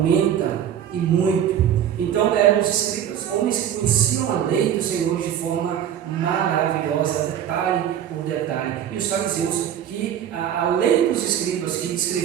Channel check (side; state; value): left; quieter; 9.8 dB